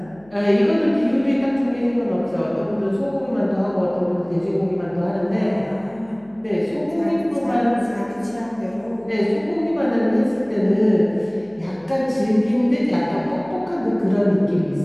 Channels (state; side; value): noise; left; hum, 28 dB below the sound